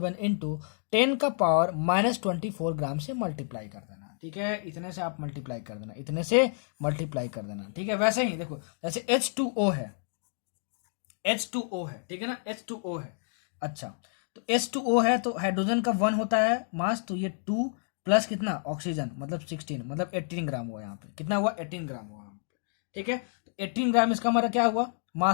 इंटू 10 का पावर -24 ग्राम से मल्टीप्लाई कर देना। ठीक है, इतने से आप मल्टीप्लाई कर देना, इतने से मल्टीप्लाई कर देना। ठीक है, वैसे ही देखो जैसे H2O है, H2O है, ठीक है ना, H2O है। अच्छा, तो H2O है तो हाइड्रोजन का 1 होता है मास, तो ये 2 प्लस कितना ऑक्सीजन, मतलब 16, मतलब 18 ग्राम हुआ यहाँ पे। कितना हुआ, 18 ग्राम हुआ यहाँ पे। ठीक है, तो 18 ग्राम इसका हमारा क्या हुआ,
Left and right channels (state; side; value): silent; right; digital silence